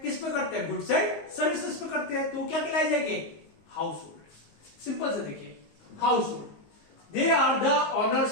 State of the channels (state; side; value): late; right; 19 ms